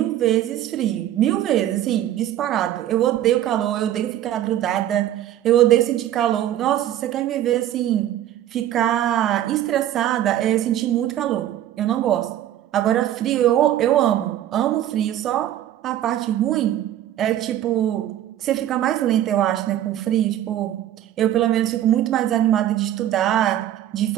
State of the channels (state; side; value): quieter; left; 12.1 dB